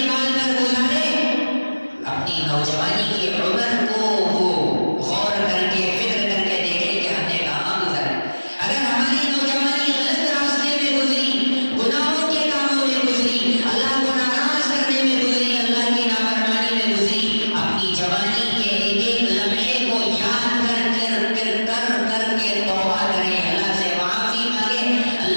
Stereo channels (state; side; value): inverted; both; correlation -1.00